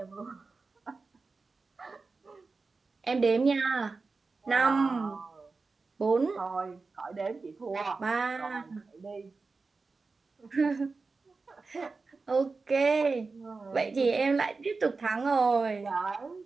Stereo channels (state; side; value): quieter; left; 4.1 dB